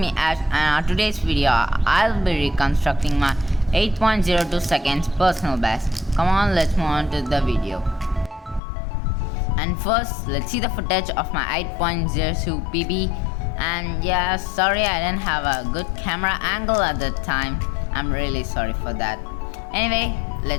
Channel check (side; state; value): right; drops out; at 8.6 s